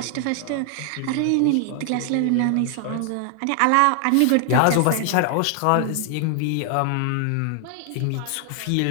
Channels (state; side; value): different; both; correlation 0.00